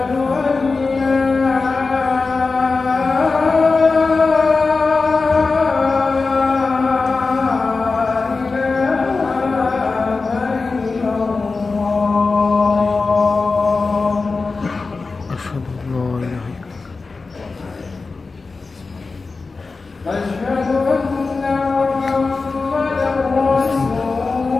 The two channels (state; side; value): quieter; right; 4.0 dB